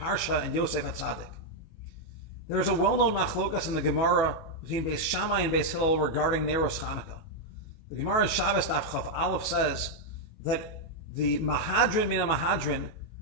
and Yosef HaTzadik. There's a well-known machlokas in the Gemara between Beis Shammai and Beis Hillel regarding Neros Chanukah. The Gemara in Shabbos Daf Chaf Aleph says that the Mahadrin Mina Mahadrin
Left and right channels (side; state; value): right; late; 18 ms